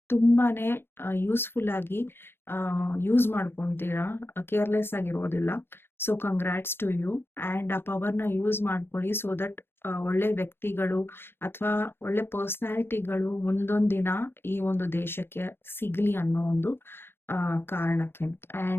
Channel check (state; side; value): late; right; 0.11 ms